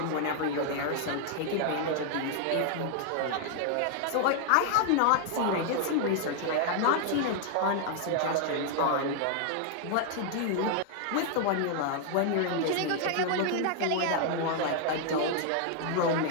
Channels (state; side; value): different; both; correlation 0.00